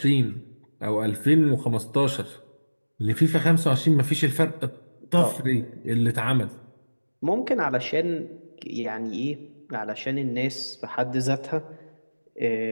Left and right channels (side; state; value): both; inverted; correlation -1.00